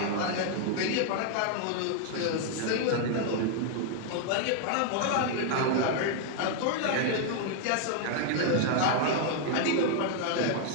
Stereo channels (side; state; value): both; different; correlation 0.00